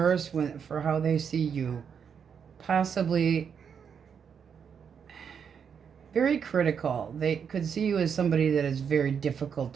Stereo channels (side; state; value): left; quieter; 7.1 dB